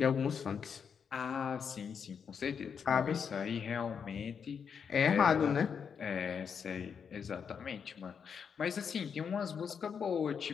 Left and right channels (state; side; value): quieter; right; 6.8 dB